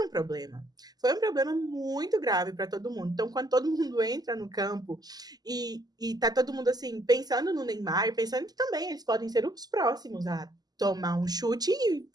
um problema. Foi um problema muito grave para todo mundo. Então, quando todo mundo entra no campo e tá todo mundo, assim, pensando no Neymar, pensando que também eles podem ser os próximos a tomar um chute e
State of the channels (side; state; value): left; late; 0.19 ms